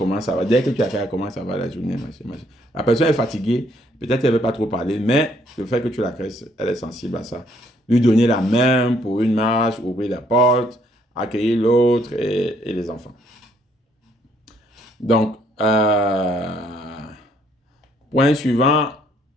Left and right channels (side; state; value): both; normal; correlation 0.67